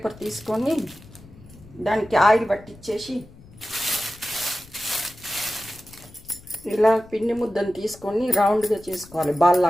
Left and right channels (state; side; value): noise; left; rumble, 22 dB below the sound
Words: తీసుకొని దానికి ఆయిల్ పట్టించేసి ఇలా పిండి ముద్దను తీసుకొని రౌండ్గా చేసుకోవాలి, బాల్